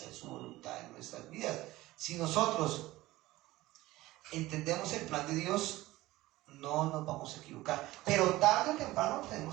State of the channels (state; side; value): quieter; left; 17.9 dB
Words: su voluntad en nuestras vidas. Si nosotros entendemos el plan de Dios, no nos vamos a equivocar. Pero tarde o temprano